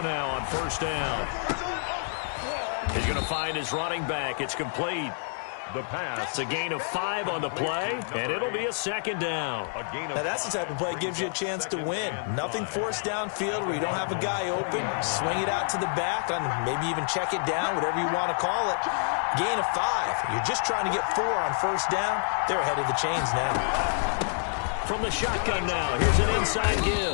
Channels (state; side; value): silent; right; 59 dB below the other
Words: now on first down. He's going to find his running back. It's complete. The pass. It's a gain of 5 on the play, and it'll be a second down. Now that's the type of play that gives you a chance to win. Nothing forced downfield where you don't have a guy open. Swing it out to the back, and maybe even check it down, whatever you want to call it. Gain of 5. You're just trying to get 4 on first down. They're ahead of the chains now. From the shotgun now, here's an inside